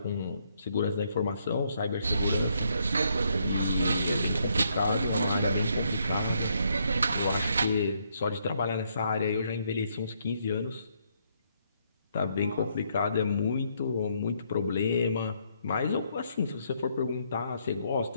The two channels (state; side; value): inverted; both; correlation -0.72